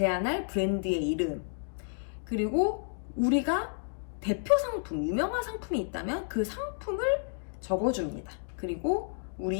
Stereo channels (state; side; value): silent; right; digital silence